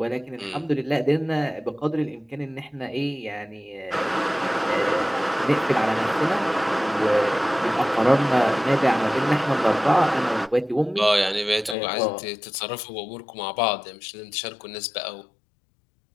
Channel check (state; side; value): drops out; right; at 11.8 s